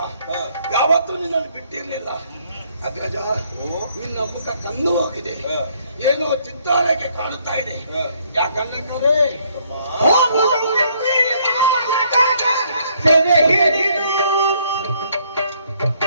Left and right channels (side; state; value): both; inverted; correlation -0.67